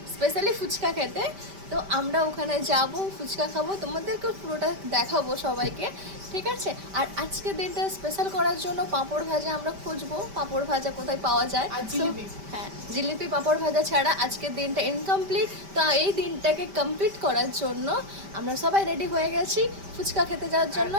স্পেশালি ফুচকা খেতে। তো আমরা ওখানে যাব, ফুচকা খাবো, তোমাদেরকে পুরোটা দেখাবো সবাইকে, ঠিক আছে? আর আজকের দিনটা স্পেশাল করার জন্য পাঁপড় ভাজা আমরা খুঁজবো, পাঁপড় ভাজা কোথায় পাওয়া যায়। আর জিলিপি। হ্যাঁ, জিলিপি পাঁপড় ভাজা ছাড়া আজকের দিনটা ইনকমপ্লিট। তো এই দিনটাকে কমপ্লিট করার জন্য আমরা সবাই রেডি হয়ে গেছি ফুচকা খেতে যাওয়ার জন্য।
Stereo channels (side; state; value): left; late; 5.1 ms